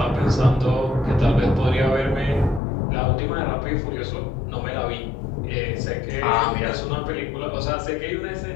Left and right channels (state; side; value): drops out; right; at 2.6 s